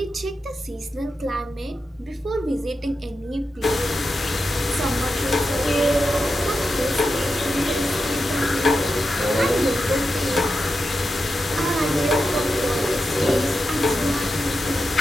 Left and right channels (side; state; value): both; normal; correlation 0.89